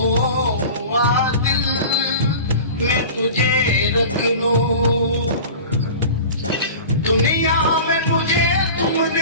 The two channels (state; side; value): inverted; both; correlation -0.36